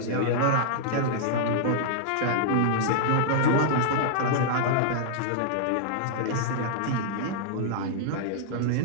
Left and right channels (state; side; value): different; both; correlation -0.01